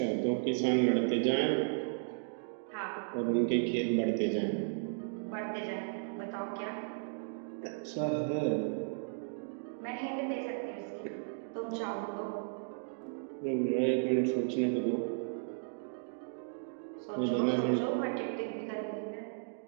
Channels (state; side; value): silent; left; digital silence